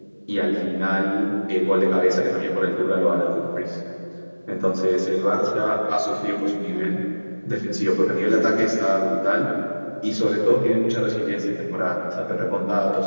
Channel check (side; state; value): both; inverted; correlation -1.00